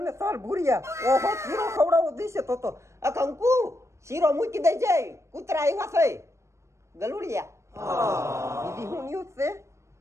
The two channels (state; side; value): late; left; 0.14 ms